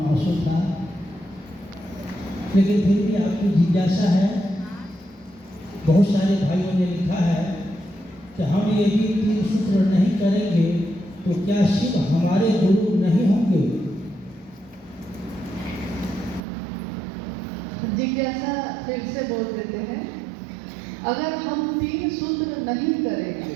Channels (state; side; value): drops out; left; at 16.4 s